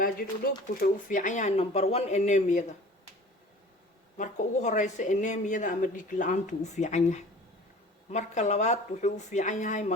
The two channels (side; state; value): both; normal; correlation 0.44